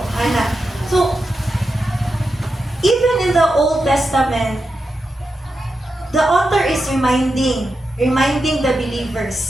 Anak. So, even in the Old Testament, the author is reminding the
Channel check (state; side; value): normal; both; correlation 0.89